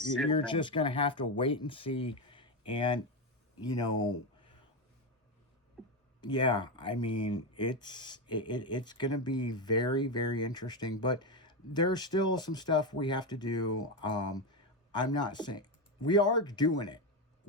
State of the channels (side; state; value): both; normal; correlation 0.10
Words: You're just going to have to wait and see. And, you know, yeah, I mean, it's going to be very, very interesting. But there's still some stuff we have to do. I'm not saying we are doing it.